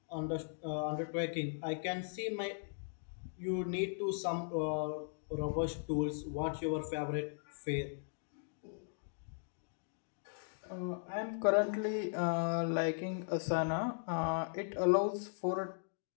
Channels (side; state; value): right; silent; digital silence